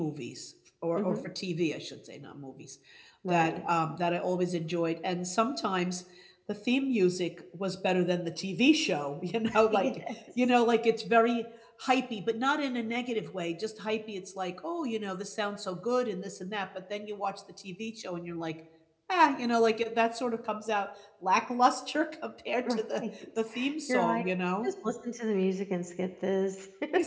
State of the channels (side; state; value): both; identical; correlation 1.00